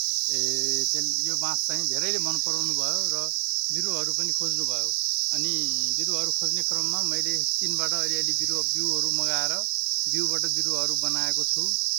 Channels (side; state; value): left; silent; digital silence